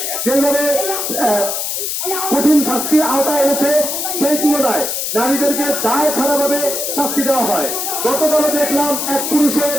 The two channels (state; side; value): noise; left; hiss, 2 dB below the sound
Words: যেভাবে কঠিন শাস্তির আওতায় এনেছে সেই তুলনায় নারীদেরকে দায় ছাড়াভাবে শাস্তি দেওয়া হয়। গতকালও দেখলাম এক